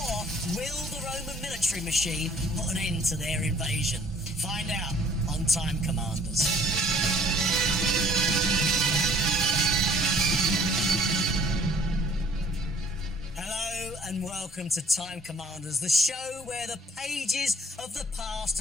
will the Roman military machine put an end to their invasion? Find out on Time Commanders. Hello and welcome to Time Commanders, the show where the pages of the past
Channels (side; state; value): both; normal; correlation 0.56